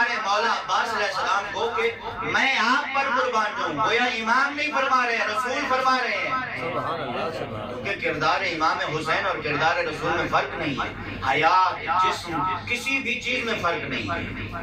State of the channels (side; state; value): both; identical; correlation 1.00